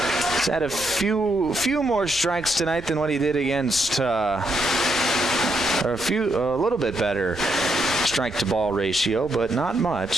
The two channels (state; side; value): noise; right; rumble, 18 dB below the sound